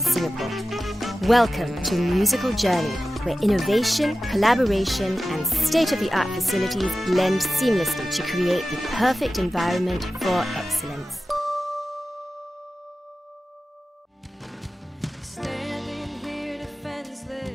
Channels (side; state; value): both; normal; correlation 0.94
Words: Singapore. Welcome to Musical Journey, where innovation, collaboration, and state-of-the-art facilities blend seamlessly to create the perfect environment for excellence.